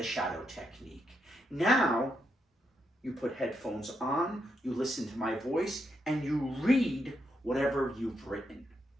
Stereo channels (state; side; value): normal; both; correlation 0.81